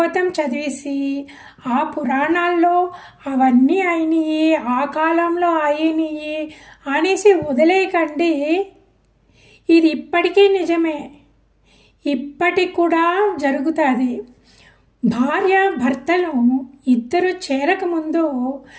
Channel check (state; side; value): identical; both; correlation 1.00